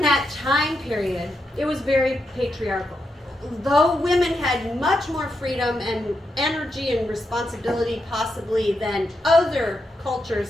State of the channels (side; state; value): both; normal; correlation 0.84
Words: that time period, it was very patriarchal. Though women had much more freedom and energy and responsibility possibly than other cultures